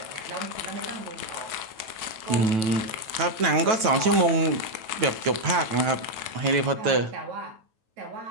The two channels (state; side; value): late; left; 9.1 ms